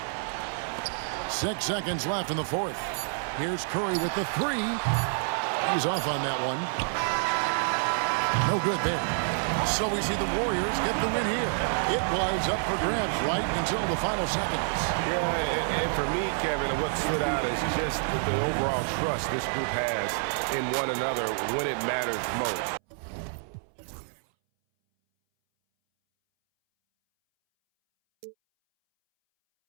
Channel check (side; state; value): left; silent; 59 dB below the other